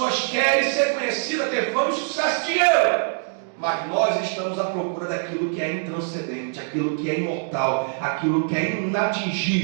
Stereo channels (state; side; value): silent; left; digital silence